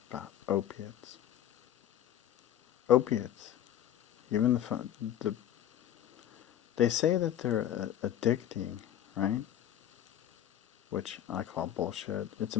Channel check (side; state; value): right; quieter; 11.1 dB